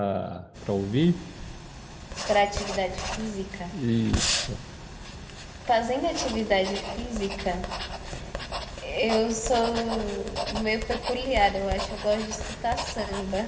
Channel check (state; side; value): identical; both; correlation 1.00